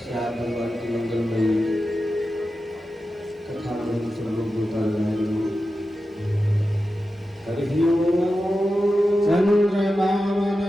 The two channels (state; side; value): normal; both; correlation 0.92